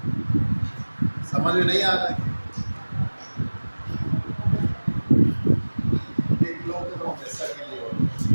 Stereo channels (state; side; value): inverted; both; correlation -1.00